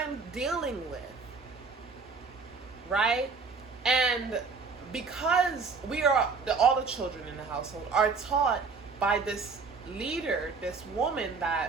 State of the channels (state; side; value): quieter; left; 4.7 dB